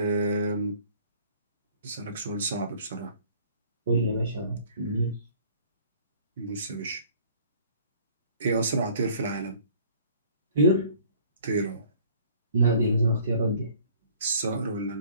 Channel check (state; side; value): inverted; both; correlation -0.54